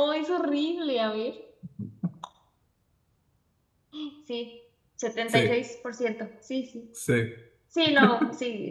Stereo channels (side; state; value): both; identical; correlation 1.00